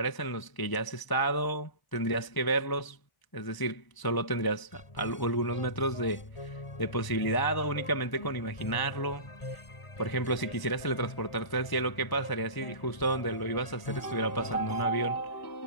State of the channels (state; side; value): late; right; 1.0 ms